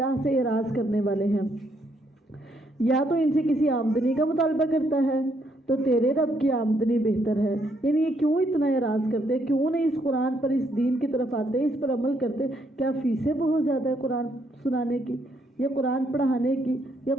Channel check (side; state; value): both; normal; correlation 0.73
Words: سے اعراض کرنے والے ہیں. یا تو ان سے کسی آمدنی کا مطالبہ کرتا ہے تو تیرے رب کی آمدنی بہتر ہے. یعنی یہ کیوں اتنا اعراض کرتے، کیوں نہیں اس قرآن پر، اس دین کی طرف آتے، اس پر عمل کرتے؟ کیا فیسیں بہت زیادہ ہے قرآن سنانے کی، یا قرآن پڑھانے کی، یا